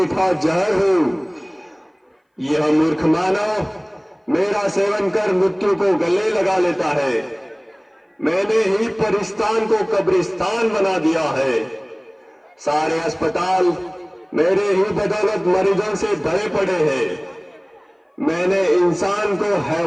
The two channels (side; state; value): both; identical; correlation 1.00